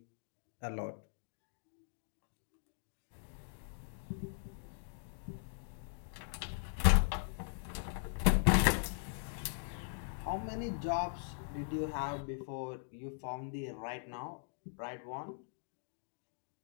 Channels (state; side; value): silent; right; digital silence